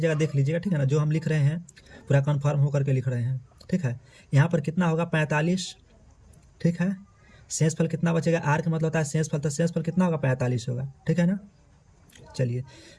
देख लीजिएगा। ठीक है ना। जो हम लिख रहे हैं पूरा कन्फर्म होकर के लिख रहे हैं। ठीक है। यहाँ पर कितना होगा? 45। ठीक है। शेष फल कितना बचेगा? आर का मतलब होता है शेष फल, तो शेष फल कितना होगा? 45 होगा। ठीक है ना। चलिए,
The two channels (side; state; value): both; identical; correlation 1.00